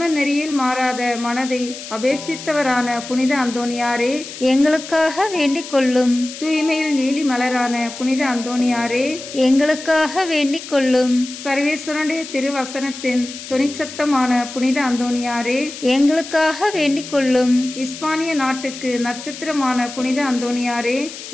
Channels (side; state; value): left; noise; hiss, 12 dB below the sound